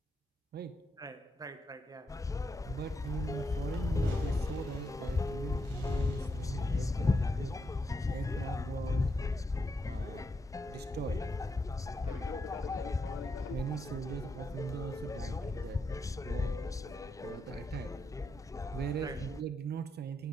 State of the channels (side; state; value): both; normal; correlation 0.82